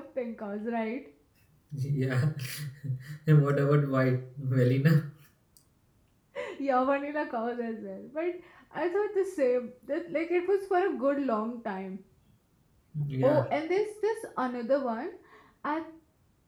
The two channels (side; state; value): both; identical; correlation 1.00